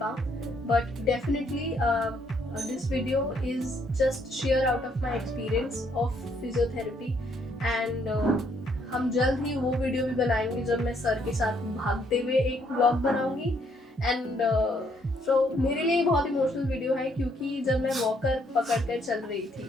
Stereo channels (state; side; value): normal; both; correlation 0.70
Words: पाऊँ, but definitely this video is just share out of my experience of physiotherapy, and हम जल्द ही वो वीडियो भी बनाएंगे जब मैं सर के साथ भागते हुए एक व्लॉग बनाऊंगी। एंड सो मेरे लिए बहुत इमोशनल वीडियो है, क्योंकि जब मैं वॉकर पकड़कर चल रही थी,